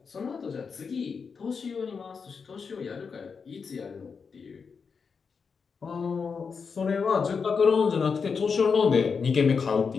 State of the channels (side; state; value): right; quieter; 5.6 dB